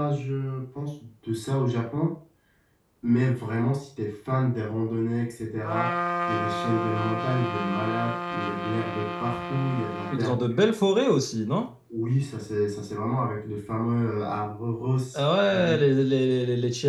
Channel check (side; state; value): both; identical; correlation 1.00